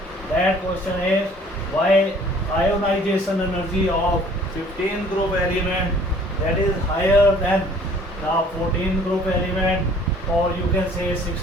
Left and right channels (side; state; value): both; normal; correlation 0.54